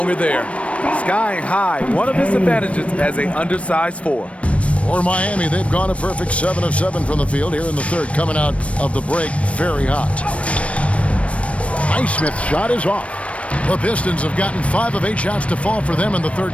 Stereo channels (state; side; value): late; right; 0.063 ms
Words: there. Skying high, one of his advantages as an undersized 4. For Miami, they've gone a perfect 7 of 7 from the field here in the third, coming out of the break very hot. Highsmith's shot is off. The Pistons have gotten 5 of 8 shots to fall for them in the third